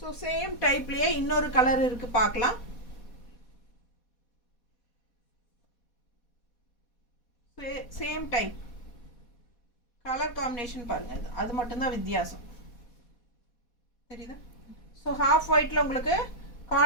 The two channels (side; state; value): right; late; 4.2 ms